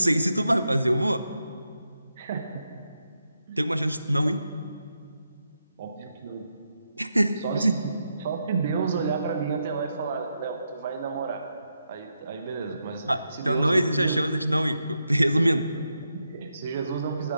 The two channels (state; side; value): inverted; both; correlation -0.84